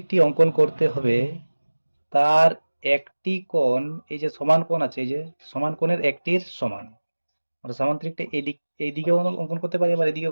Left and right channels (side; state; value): both; inverted; correlation -1.00